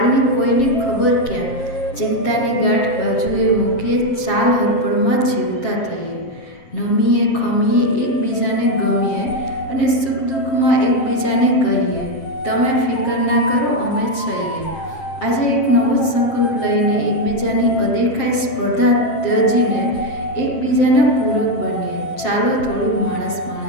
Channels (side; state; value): right; late; 7.5 ms